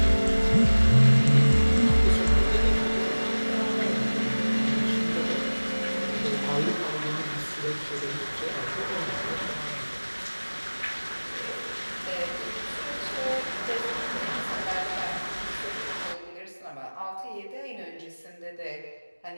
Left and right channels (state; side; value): inverted; both; correlation -1.00